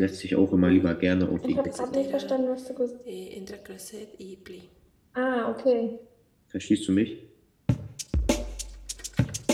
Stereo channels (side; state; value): both; identical; correlation 1.00